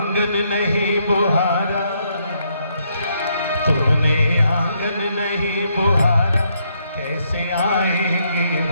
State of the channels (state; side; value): inverted; both; correlation -0.74